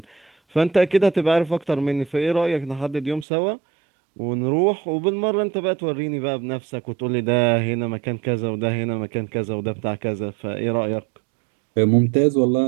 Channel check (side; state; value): left; drops out; at 3.2 s